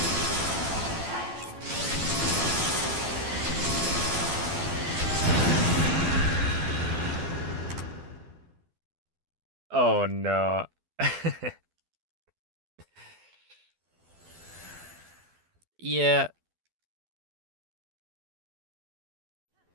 Oh no. Yeah.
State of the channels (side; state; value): left; late; 12 ms